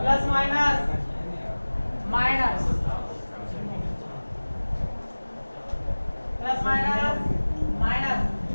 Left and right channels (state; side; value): inverted; both; correlation -1.00